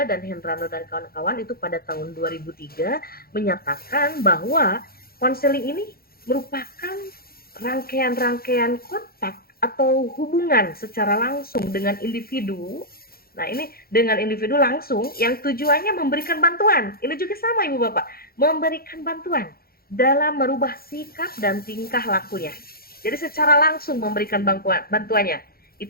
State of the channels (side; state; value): right; late; 0.44 ms